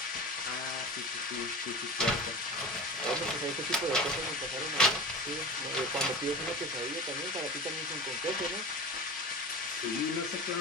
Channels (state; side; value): normal; both; correlation 0.31